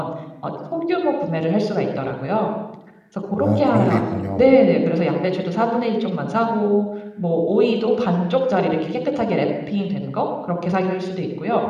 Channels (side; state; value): both; identical; correlation 1.00